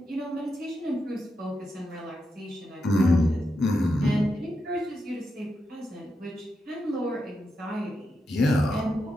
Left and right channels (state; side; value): normal; both; correlation 0.86